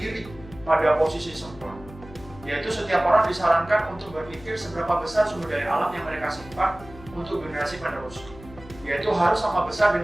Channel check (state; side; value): noise; left; hum, 18 dB below the sound